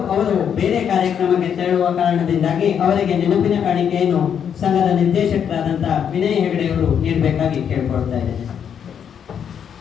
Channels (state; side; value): quieter; right; 8.1 dB